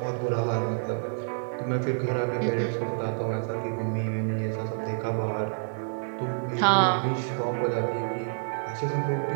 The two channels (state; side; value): silent; left; digital silence